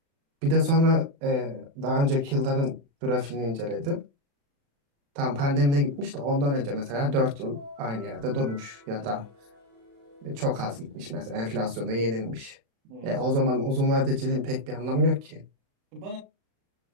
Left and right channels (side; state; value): left; late; 36 ms